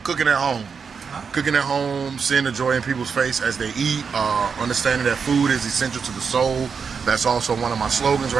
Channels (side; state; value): left; quieter; 5.9 dB